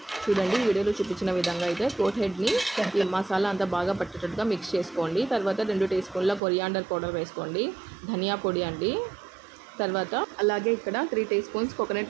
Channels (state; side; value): drops out; left; at 6.4 s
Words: చూడండి, వీడియోలో చూపించిన విధంగా అయితే గోట్ హెడ్ని మసాలా అంతా బాగా పట్టేటట్టుగా మిక్స్ చేసుకోండి. తర్వాత 2 టీ స్పూన్ల కొరియాండర్ పౌడర్ వేసుకోండి, ధనియా పొడి అండి. తర్వాత అలాగే ఇక్కడ 3 టీ స్పూన్స్